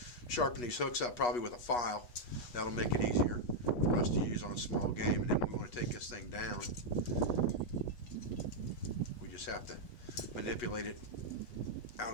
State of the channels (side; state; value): right; late; 8.3 ms